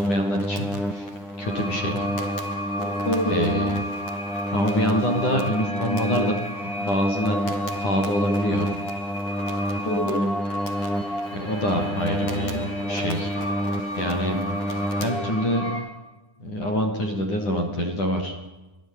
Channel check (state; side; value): late; right; 10 ms